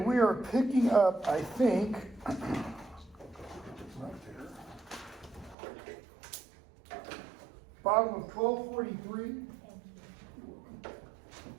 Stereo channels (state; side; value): drops out; left; at 5.6 s